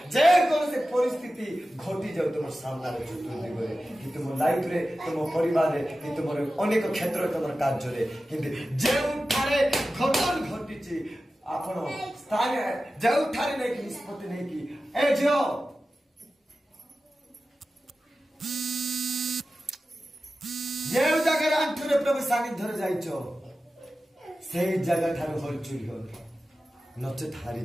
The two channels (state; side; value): normal; both; correlation 0.94